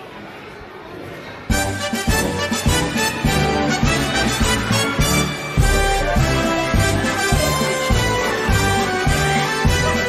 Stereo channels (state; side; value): identical; both; correlation 1.00